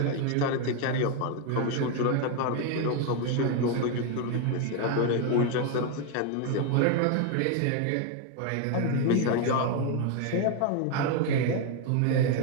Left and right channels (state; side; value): different; both; correlation 0.01